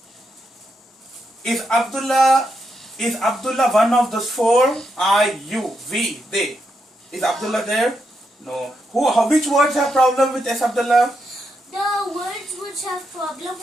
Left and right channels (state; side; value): normal; both; correlation 0.82